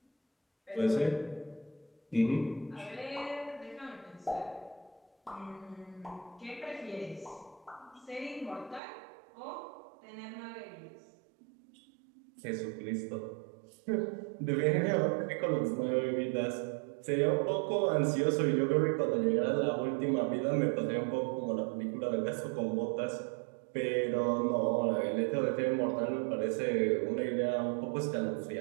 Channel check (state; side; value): drops out; left; at 8.8 s